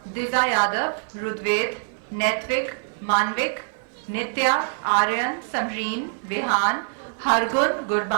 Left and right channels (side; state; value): left; silent; 62 dB below the other